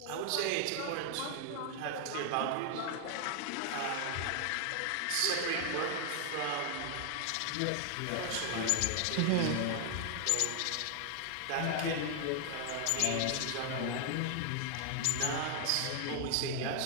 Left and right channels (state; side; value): different; both; correlation 0.00